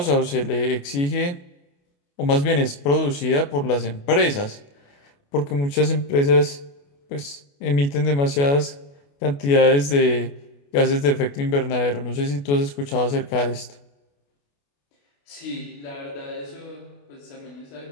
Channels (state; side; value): late; right; 28 ms